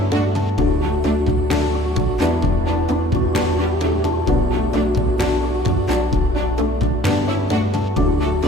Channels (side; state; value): both; normal; correlation 0.54